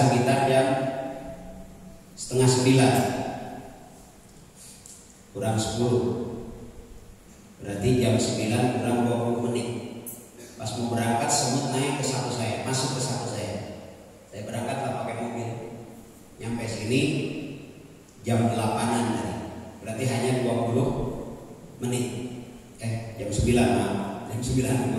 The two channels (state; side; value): identical; both; correlation 1.00